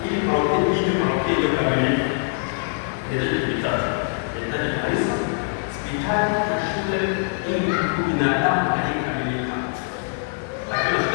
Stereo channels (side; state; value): right; silent; digital silence